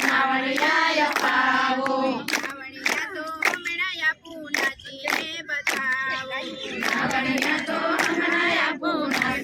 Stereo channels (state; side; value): identical; both; correlation 1.00